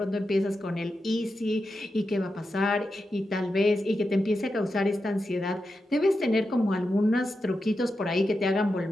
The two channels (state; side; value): normal; both; correlation 0.89